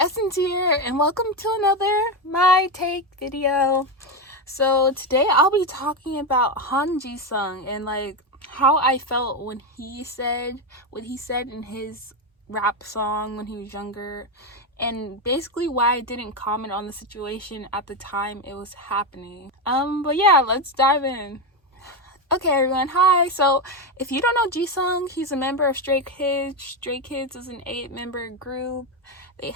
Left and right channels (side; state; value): both; normal; correlation 0.11